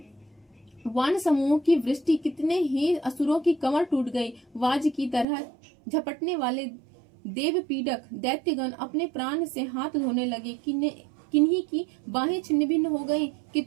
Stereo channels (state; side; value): drops out; left; at 5.2 s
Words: वान समूह की वृष्टि, कितने ही असुरों की कमर टूट गई। वाज की तरह झपटने वाले देव पीड़क दैत्यगण अपने प्राण से हाथ धोने लगे। किन्हीं की बाहें छिन्न भिन्न हो गई,